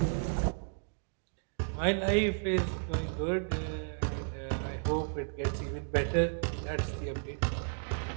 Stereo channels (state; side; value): silent; left; digital silence